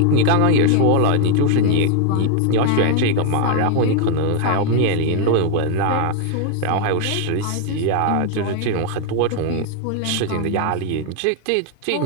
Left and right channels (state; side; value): different; both; correlation 0.00